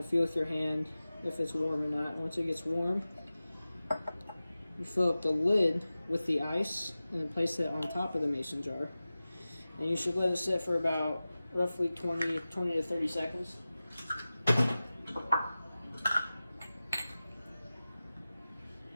feel with your hand if it's warm or not. Once it gets warm, you fill up the lid with the ice and then place it on top of the mason jar. And you should let it sit for about roughly 20 to 30 seconds.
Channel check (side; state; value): both; inverted; correlation -0.96